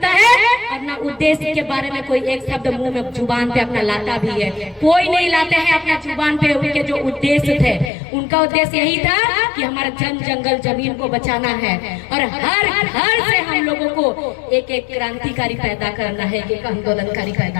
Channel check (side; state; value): right; drops out; at 7.9 s